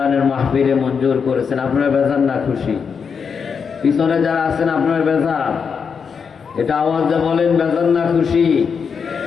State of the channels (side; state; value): right; quieter; 6.2 dB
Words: মাহফিলে মঞ্জুর করেছেন। আপনারা বেজার না খুশি? পিছনে যারা আছেন আপনার বেজার? এটা আওয়াজে বলেন বেজার না খুশি?